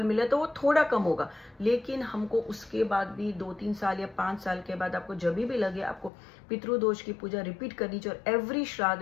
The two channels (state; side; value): drops out; right; at 6.1 s